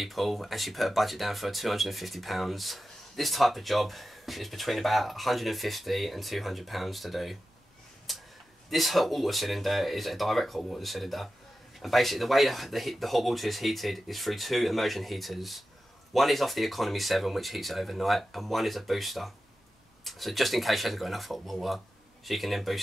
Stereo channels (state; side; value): normal; both; correlation 0.93